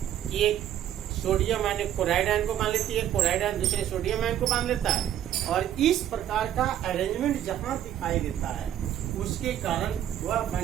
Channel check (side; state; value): left; quieter; 11.2 dB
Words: कि एक सोडियम आयन एक क्लोराइड आयन को मान लेती है, क्लोराइड आयन दूसरे सोडियम आयन को मान लेता है, और इस प्रकार का अरेंजमेंट जहां दिखाई देता है उसके कारण वह